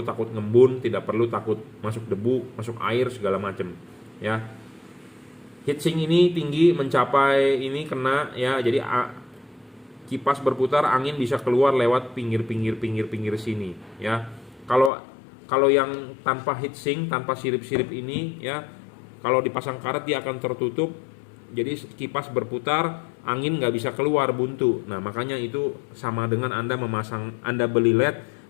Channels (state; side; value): drops out; right; at 14.9 s